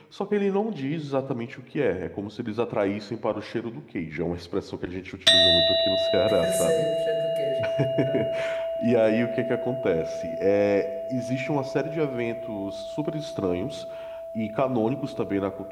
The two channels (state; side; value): identical; both; correlation 1.00